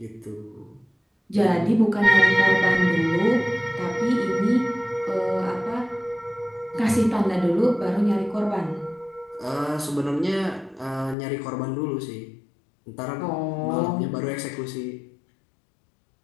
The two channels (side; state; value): right; drops out; at 11.2 s